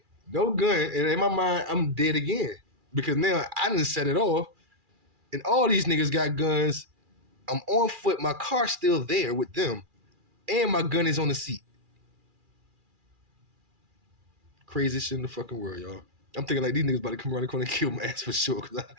no gun, and in my mind, I'm dead again. Because now I done set it off, and all these niggas got guns. I'm on foot, my car's still there with them, and my gun is on the seat. Craziest shit in the fucking world, y'all. I'm thinking like these niggas about to come around the corner and kill my ass for sure, because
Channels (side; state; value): left; late; 2.4 ms